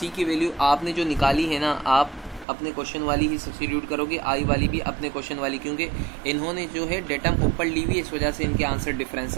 वैल्यू आपने जो निकाली है ना, आप अपने क्वेश्चन वाली ही सब्स्टिट्यूट करोगे, I वाली भी अपने क्वेश्चन वाली, क्योंकि इन्होंने जो है डेटम ऊपर ली हुई है, इस वजह से इनके आंसर डिफरेंस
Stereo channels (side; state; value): left; drops out; at 2.5 s